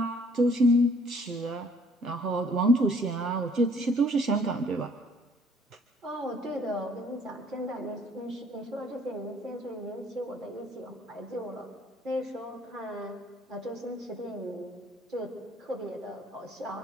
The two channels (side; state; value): both; normal; correlation 0.60